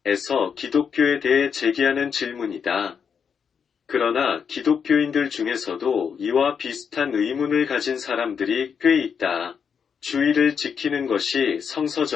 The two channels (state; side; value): quieter; right; 6.8 dB